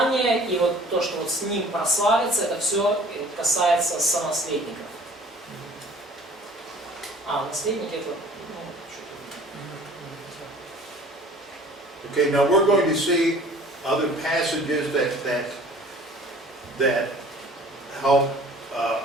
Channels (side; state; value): both; normal; correlation 0.49